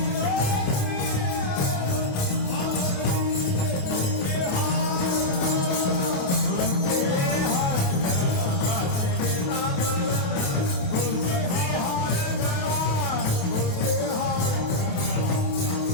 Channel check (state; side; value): late; right; 28 ms